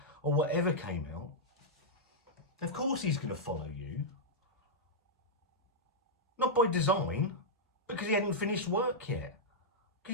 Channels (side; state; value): both; normal; correlation -0.07